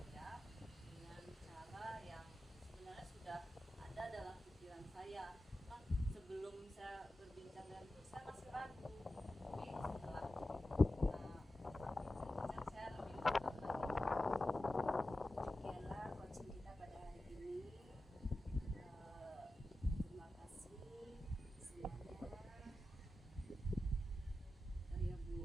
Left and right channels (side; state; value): both; normal; correlation 0.93